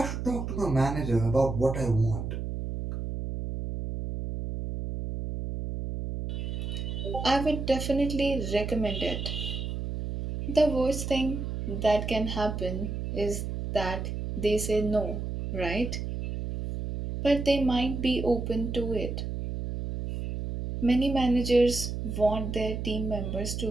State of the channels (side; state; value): right; noise; hum, 4 dB below the sound